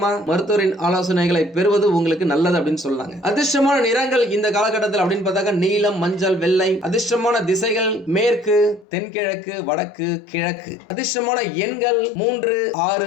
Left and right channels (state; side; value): drops out; right; at 8.8 s